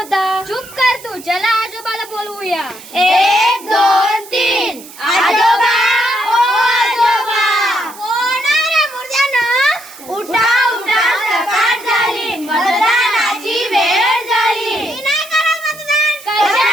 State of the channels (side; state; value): right; noise; hiss, 18 dB below the sound